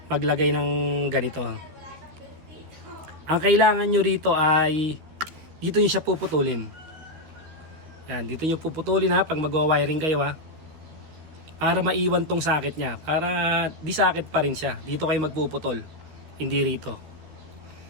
Maglagay ng ganito. Ang kailangan nyo rito ay, dito nyo siya puputulin. Yan, dito nyo puputulin ha, pag magwa-wiring kayo ha. Para maiwan tong sakit niya. Para di sakit pa rin siya. Dito kayo magpuputol. Hindi rito.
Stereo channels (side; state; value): left; late; 13 ms